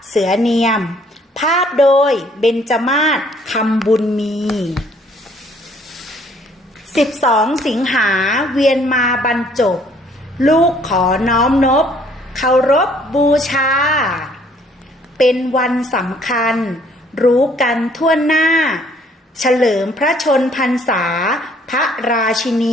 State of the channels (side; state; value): both; normal; correlation 0.61